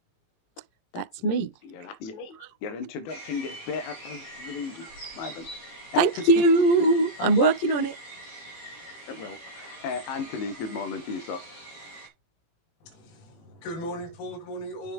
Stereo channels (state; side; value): late; right; 17 ms